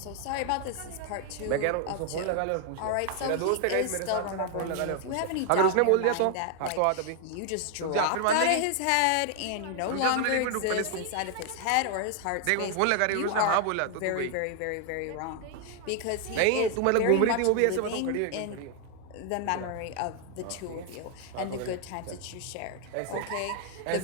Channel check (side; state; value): both; different; correlation 0.00